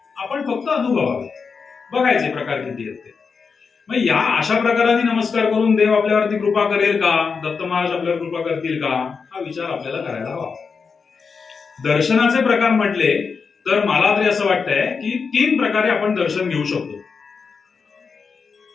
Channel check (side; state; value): right; quieter; 5.3 dB